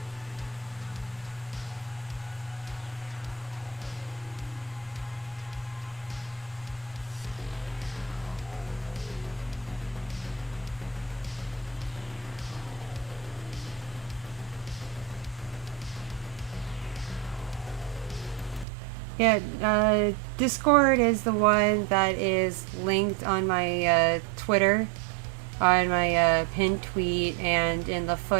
Yeah, Discord is the one that is linked on my Twitter, on my pinned tweet, and in the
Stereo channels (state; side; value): drops out; left; at 18.7 s